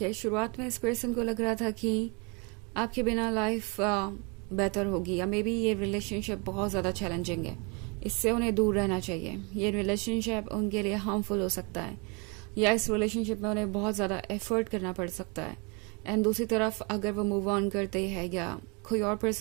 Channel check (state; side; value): quieter; left; 31.9 dB